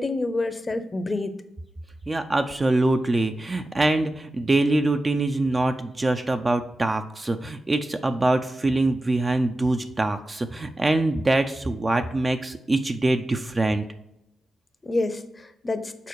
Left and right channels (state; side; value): normal; both; correlation 0.93